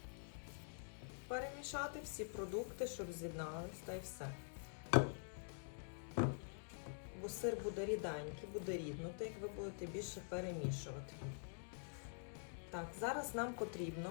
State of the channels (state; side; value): silent; right; digital silence